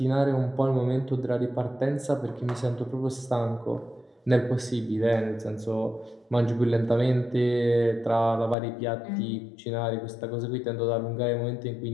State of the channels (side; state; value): right; drops out; at 8.6 s